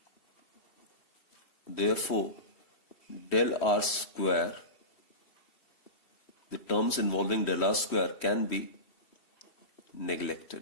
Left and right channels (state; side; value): late; right; 3.1 ms